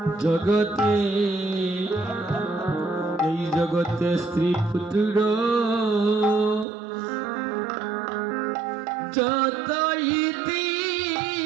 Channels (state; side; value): drops out; left; at 6.7 s